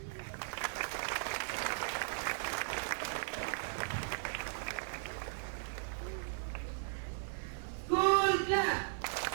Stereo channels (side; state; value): left; silent; digital silence